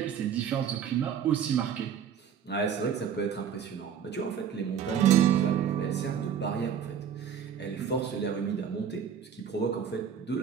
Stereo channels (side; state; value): left; quieter; 8.1 dB